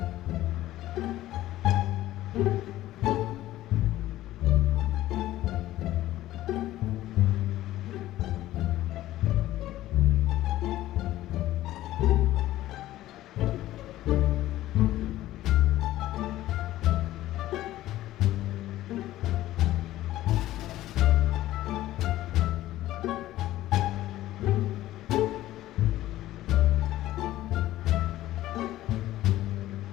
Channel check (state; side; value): quieter; right; 14.9 dB